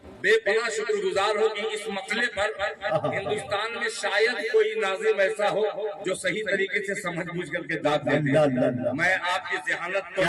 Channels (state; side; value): identical; both; correlation 1.00